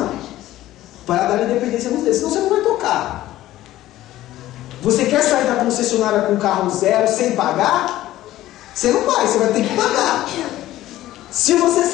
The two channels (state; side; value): quieter; right; 14.8 dB